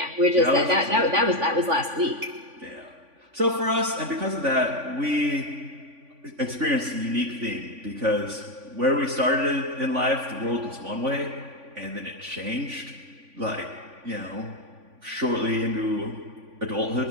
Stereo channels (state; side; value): late; left; 3.5 ms